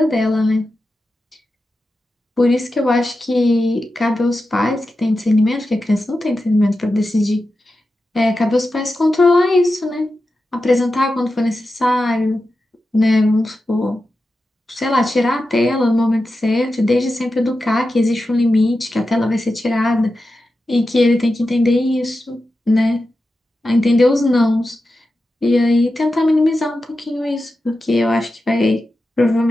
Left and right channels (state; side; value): normal; both; correlation 0.91